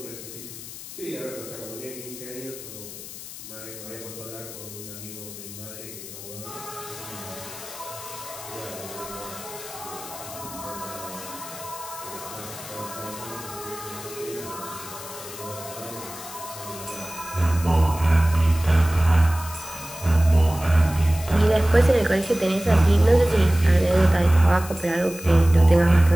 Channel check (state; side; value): noise; left; hiss, 13 dB below the sound